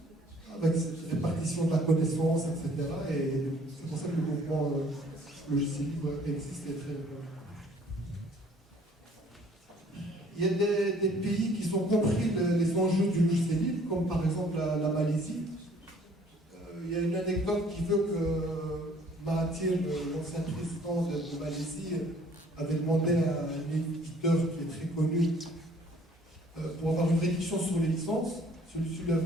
avec cette répartition de la connaissance, etc. Et c'est pour ça que le mouvement logiciel libre existe et est très répandu. Il y a des pays qui ont compris les enjeux du logiciel libre, comme par exemple la Malaisie. Il y a une anecdote qui veut que Mahathir, l'ancien président de Malaisie, avait demandé à un éditeur qui est très connu pour avoir une réduction sur les licences. Celui-ci lui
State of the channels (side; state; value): both; normal; correlation 0.57